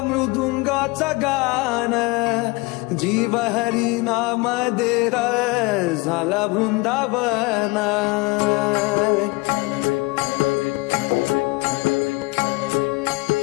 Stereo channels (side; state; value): right; quieter; 24.6 dB